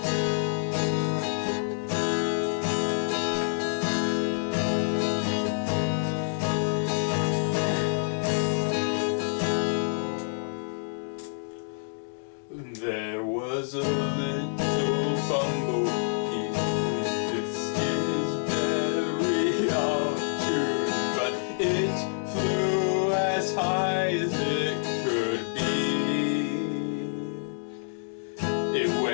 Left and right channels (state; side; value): silent; right; digital silence